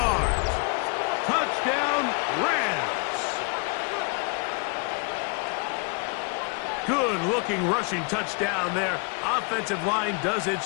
Touchdown, Rams. Good-looking rushing touchdown there. Offensive line does its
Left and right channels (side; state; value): right; quieter; 34.7 dB